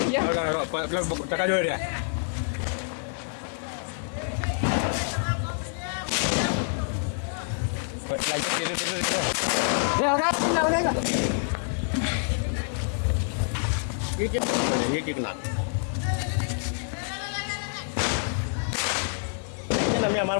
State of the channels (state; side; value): silent; right; digital silence